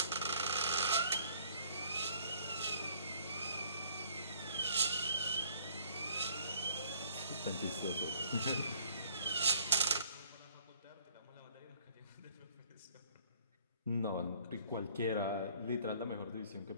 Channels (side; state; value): both; inverted; correlation -0.58